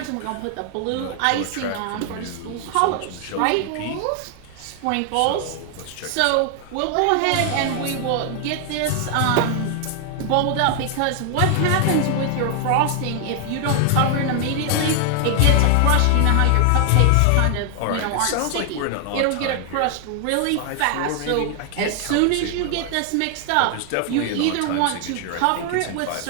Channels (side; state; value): both; different; correlation 0.00